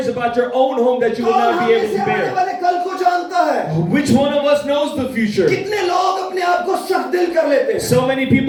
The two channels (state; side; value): identical; both; correlation 1.00